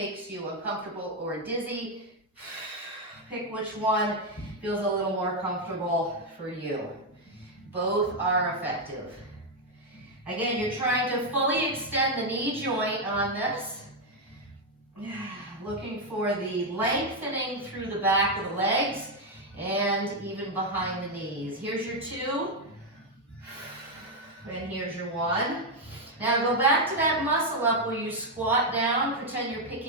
you uncomfortable or dizzy, pick which one feels a little more comfortable for you. Both are effective. Again, you're trying to fully extend the knee joint on this. Looking for the lengthening through the back of the legs and even behind the knees. Here's your 2, and here's your 1. Now go back to that muscle up where you squat down, pretend you're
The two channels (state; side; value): normal; both; correlation 0.02